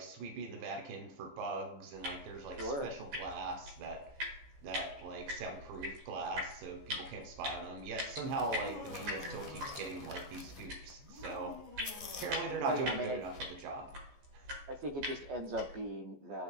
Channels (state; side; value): late; left; 14 ms